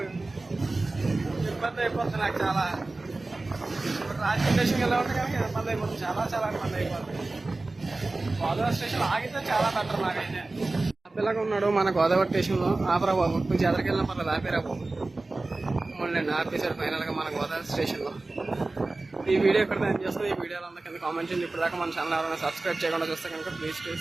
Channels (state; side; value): quieter; left; 3.2 dB